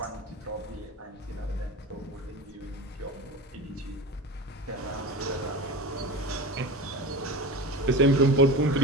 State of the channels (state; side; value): normal; both; correlation 0.29